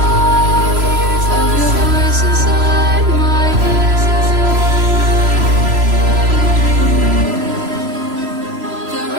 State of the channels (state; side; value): late; left; 3.0 ms